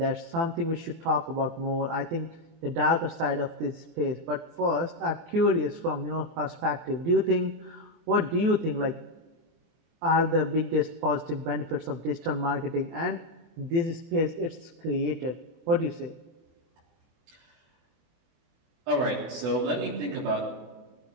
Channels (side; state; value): left; late; 24 ms